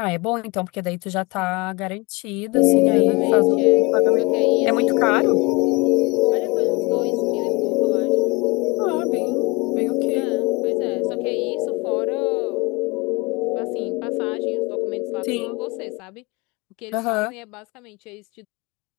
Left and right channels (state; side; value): quieter; right; 26.3 dB